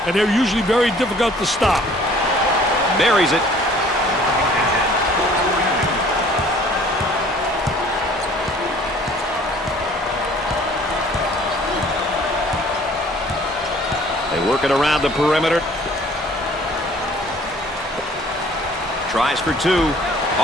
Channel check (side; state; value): both; normal; correlation 0.54